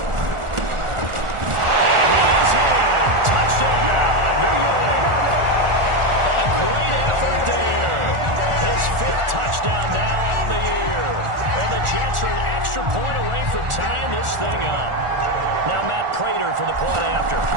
Touchdown now on the year. And the Jets are an extra point away from tying this thing up. Now Matt Prater for the point after.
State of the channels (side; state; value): left; late; 1.4 ms